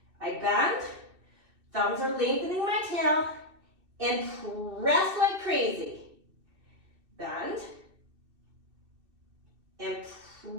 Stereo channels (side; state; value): left; late; 2.6 ms